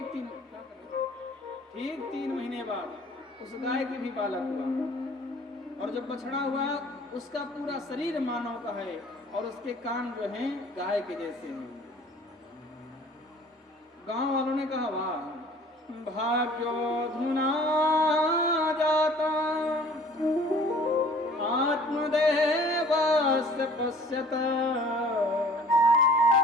3 महीने बाद उस गाय के भी बालक हुआ और जब बछड़ा हुआ उसका पूरा शरीर मानव का है और उसके कान जो हैं गाय के जैसे हैं। गांव वालों ने कहा वाह भाग्योधुना जाता आत्मदेवस्य पश्यत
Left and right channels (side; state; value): both; normal; correlation 0.50